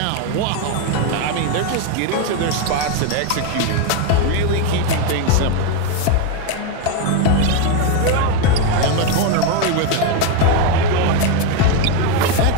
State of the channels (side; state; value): both; different; correlation 0.02